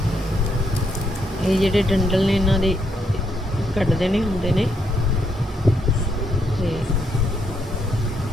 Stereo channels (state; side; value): normal; both; correlation 0.76